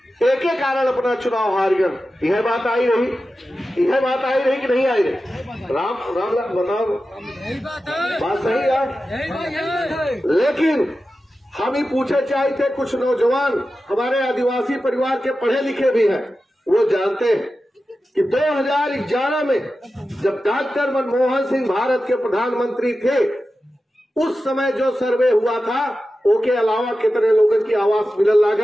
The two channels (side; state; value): both; normal; correlation 0.93